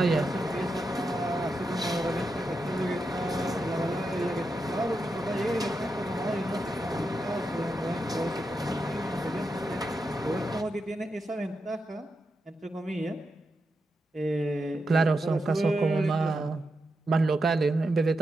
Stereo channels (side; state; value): both; normal; correlation 0.87